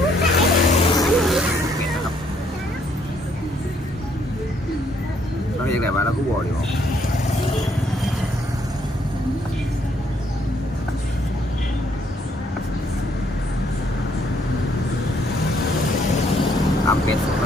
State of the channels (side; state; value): both; normal; correlation 0.69